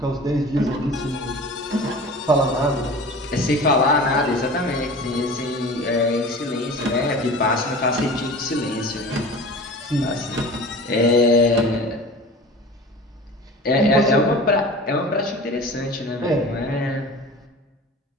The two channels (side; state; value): both; normal; correlation 0.38